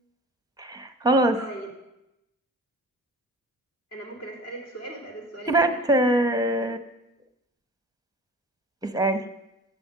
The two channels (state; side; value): normal; both; correlation 0.41